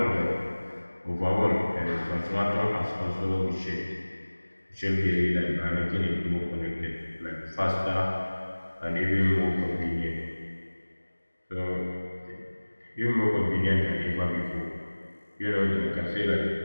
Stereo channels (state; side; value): inverted; both; correlation -1.00